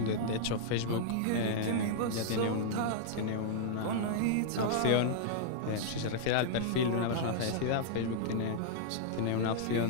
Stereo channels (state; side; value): different; both; correlation -0.01